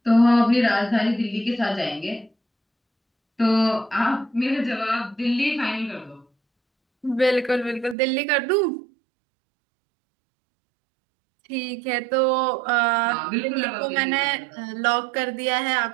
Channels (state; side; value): drops out; left; at 8.0 s